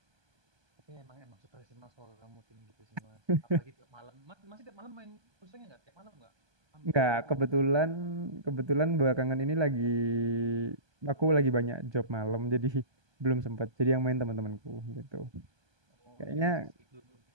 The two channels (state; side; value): late; left; 1.2 ms